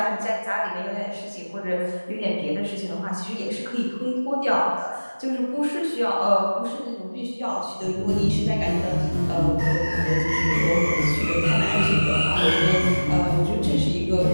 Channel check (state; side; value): inverted; both; correlation -1.00